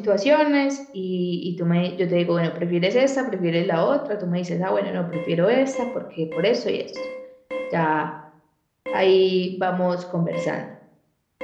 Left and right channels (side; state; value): both; identical; correlation 1.00